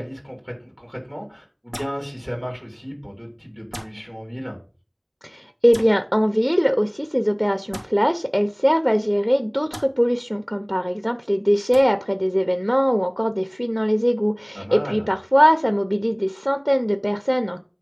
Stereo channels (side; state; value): both; identical; correlation 1.00